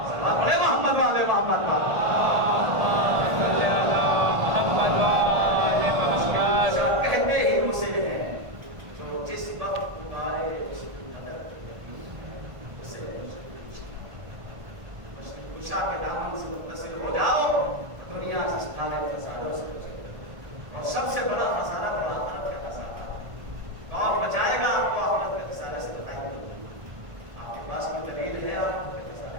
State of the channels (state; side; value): late; left; 1.5 ms